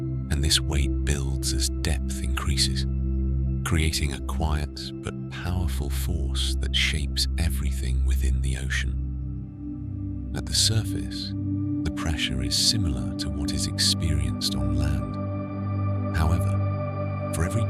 this weight builds as depth increases, creating a quiet but powerful force that shapes everything within the ocean. At the surface, the pressure is similar to what is experienced on land. However, for every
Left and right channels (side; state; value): both; identical; correlation 1.00